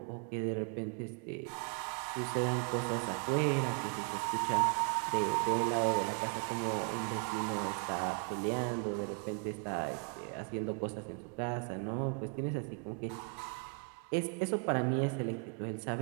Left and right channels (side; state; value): left; quieter; 36.4 dB